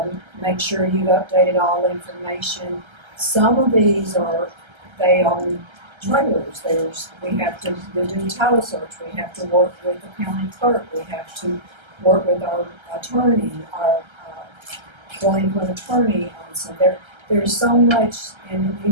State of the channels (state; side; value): late; left; 1.3 ms